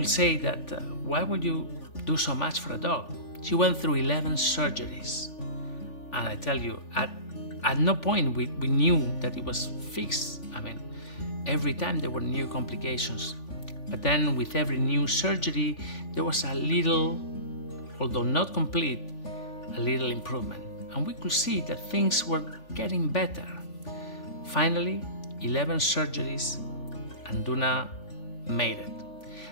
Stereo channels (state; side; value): late; right; 3.4 ms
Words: say that, why would you do so much for a dog? She went through 11 surgeries. And I tell you, at no point we knew that it was fixed. I mean, every time there were new complications. But then with every new surgery, there was a little, although not complete, a little improvement. And we could see that things were getting better. Finally, 11 surgeries, and Duna made it.